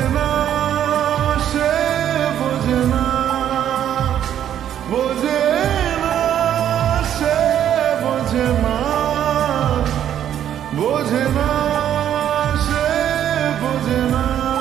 না সে, বোঝে না, বোঝে না সে, বোঝে না, বোঝে না সে, বোঝে না,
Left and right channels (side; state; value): left; quieter; 10.3 dB